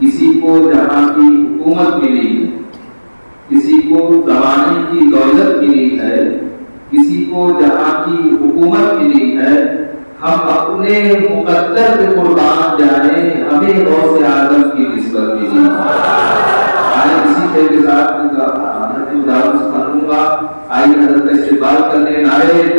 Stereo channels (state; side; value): inverted; both; correlation -1.00